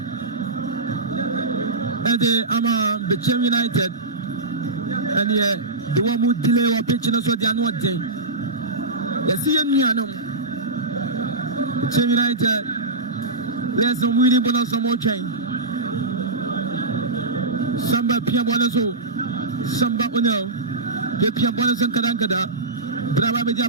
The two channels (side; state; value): left; quieter; 3.1 dB